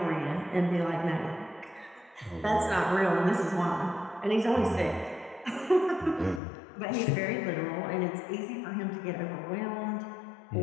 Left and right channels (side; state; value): right; drops out; at 6.4 s